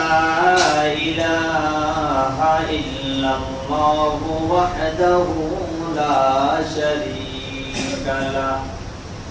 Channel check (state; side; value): identical; both; correlation 1.00